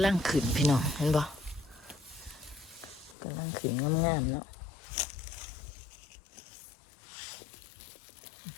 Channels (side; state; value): right; drops out; at 3.2 s